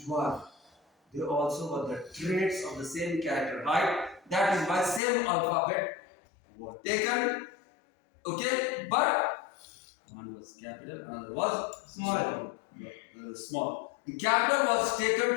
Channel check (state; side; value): drops out; right; at 5.0 s